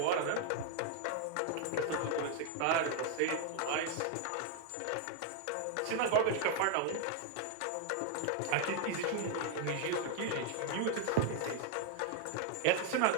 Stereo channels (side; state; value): both; different; correlation 0.00